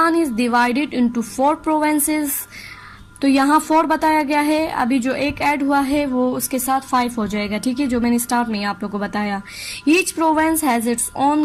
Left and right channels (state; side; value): identical; both; correlation 1.00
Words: is divided into 4 provinces. तो यहाँ 4 बताया गया है, अभी जो एक ऐड हुआ है वो उसके साथ 5 हो जाएगा, ठीक है, जो मैंने स्टार्ट में आप लोगों को बताया। Each province has its own